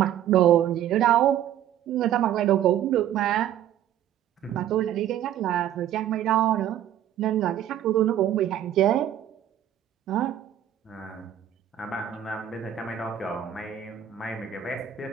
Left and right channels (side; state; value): left; quieter; 11.0 dB